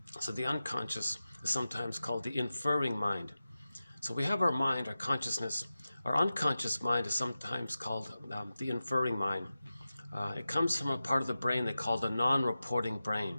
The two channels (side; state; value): both; inverted; correlation -0.94